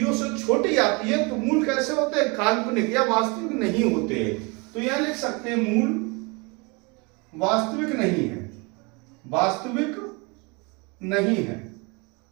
से छोटी आती है तो मूल कैसे होते हैं? काल्पनिक या वास्तविक नहीं होते। तो यहां लिख सकते हैं मूल वास्तविक नहीं है, वास्तविक नहीं है।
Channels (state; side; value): quieter; left; 29.0 dB